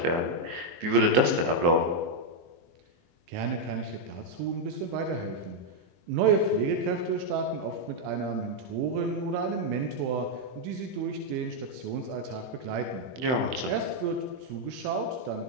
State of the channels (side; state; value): left; late; 23 ms